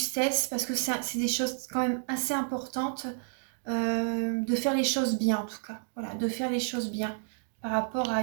parce que c'est des choses quand même assez importantes. De faire les choses bien en tout cas. Voilà, de faire les choses bien. Par rapport à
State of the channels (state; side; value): silent; left; digital silence